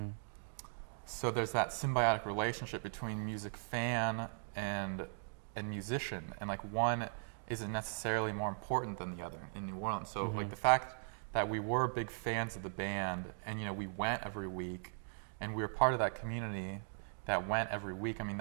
So there's that symbiotic relationship between music fan and musician, and like one isn't necessarily more important than the other in New Orleans. So like the fact that we were big fans of the band, and we went every week, and we were part of that community that went every week,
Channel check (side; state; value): left; silent; digital silence